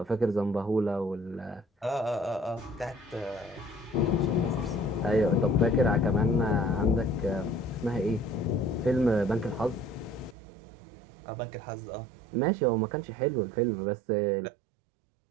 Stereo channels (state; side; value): drops out; left; at 10.4 s